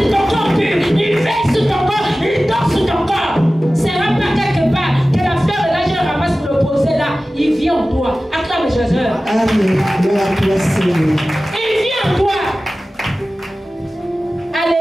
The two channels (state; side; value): normal; both; correlation 0.96